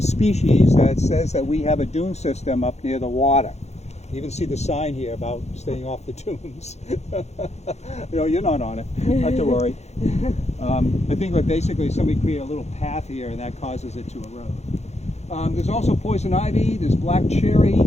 that says that we have a dune system up near the water. You even see the sign here about staying off the dunes. You know, you're not on it, not to worry. I think that basically somebody created a little path here and that causes it to erode. There's also poison ivy, there's black cherry,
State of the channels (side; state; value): right; late; 0.32 ms